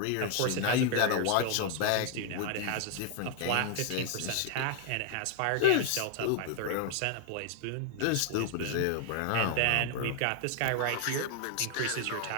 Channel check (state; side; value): different; both; correlation 0.00